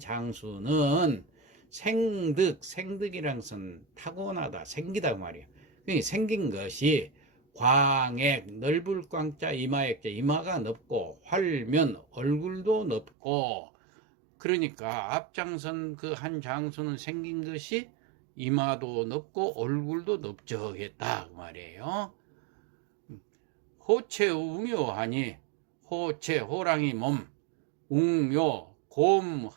생득이란 것은 타고나다 생기다 그 말이에요. 그러니까 생긴 것이 광액 넓을 광자 이마액자 이마가 넓고 활면 얼굴도 넓고, 그러니까 앞장선 그 한 장수는 생긴 것이 이마도 넓고 얼굴도 넓적했다 그 말이에요. 호체 웅요하니, 호체 호랑이 몸, 웅요 곰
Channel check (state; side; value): drops out; left; at 13.1 s